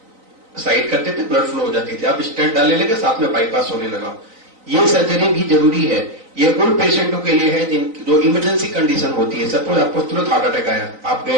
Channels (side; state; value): left; late; 3.9 ms